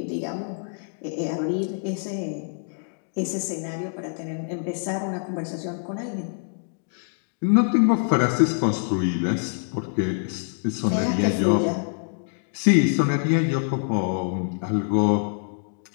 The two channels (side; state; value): right; silent; digital silence